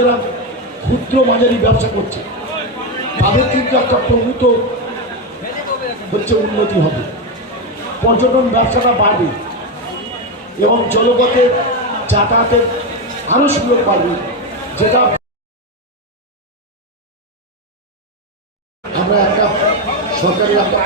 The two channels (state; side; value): normal; both; correlation 0.10